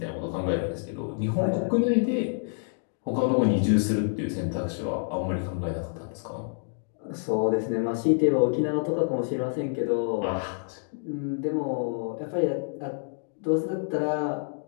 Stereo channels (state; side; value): silent; right; digital silence